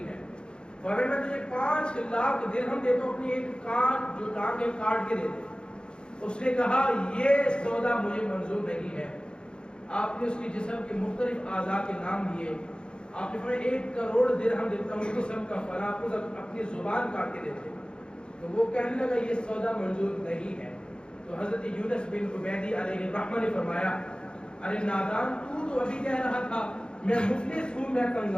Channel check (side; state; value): right; late; 0.051 ms